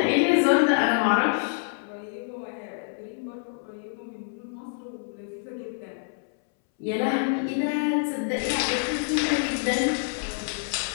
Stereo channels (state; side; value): silent; right; 60 dB below the other